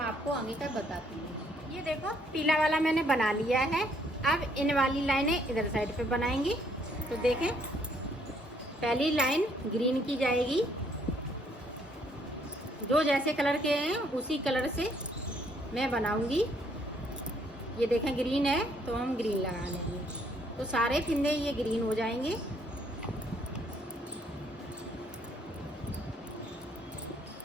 आपको आगे का बताती हूँ। ये देखो पीला वाला मैंने बना लिया है। अब इन वाली लाइनें इधर साइड पे बनाएंगी। तो देखें पहली लाइन ग्रीन की जाएगी, जो जैसे कलर के हैं उसी कलर से मैं बनाऊंगी। ये देखें ग्रीन है तो हम ग्रीन लगा लेंगे, तो सारे फिंदे ये ग्रीन हो जाएंगे।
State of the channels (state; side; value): normal; both; correlation 0.67